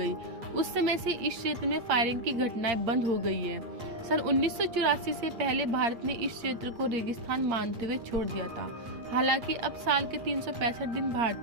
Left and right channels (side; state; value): left; late; 8.7 ms